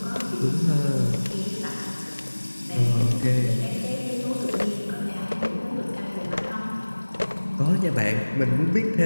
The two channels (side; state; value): both; inverted; correlation -1.00